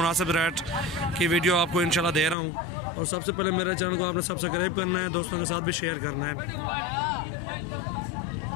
रेट की वीडियो आपको इंशाल्लाह दे रहा हूँ। और सबसे पहले मेरे चैनल को आपने सब्सक्राइब करना है, दोस्तों के साथ भी शेयर करना है।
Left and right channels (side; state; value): right; drops out; at 2.4 s